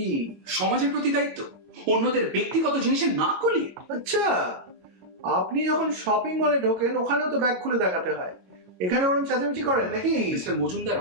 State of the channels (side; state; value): left; late; 22 ms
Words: সমাজের প্রতি দায়িত্ব? অন্যদের ব্যক্তিগত জিনিসে না কলিয়ে? আচ্ছা, আপনি যখন শপিং মলে ঢোকেন ওখানেও তো ব্যাগ খুলে দেখাতে হয়, এখানে ওরকম চেঁচামেচি করেন নাকি? মিস্টার মজুমদার,